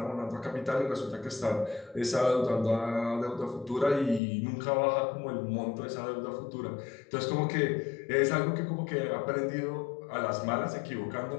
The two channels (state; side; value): drops out; right; at 4.2 s